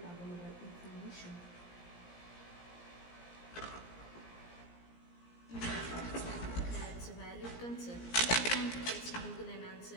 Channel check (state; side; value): late; right; 17 ms